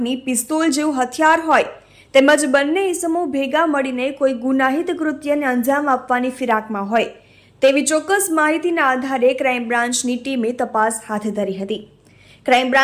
પિસ્તોલ જેવું હથિયાર હોય તેમજ બંને ઇસમો ભેગા મળીને કોઈ ગુનાહિત કૃત્યને અંજામ આપવાની ફિરાકમાં હોય તેવી ચોક્કસ માહિતીના આધારે ક્રાઇમ બ્રાન્ચની ટીમે તપાસ હાથ ધરી હતી। ક્રાઇમ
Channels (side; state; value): both; identical; correlation 1.00